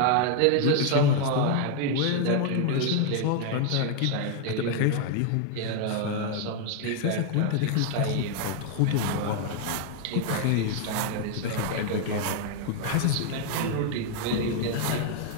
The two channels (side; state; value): both; different; correlation 0.00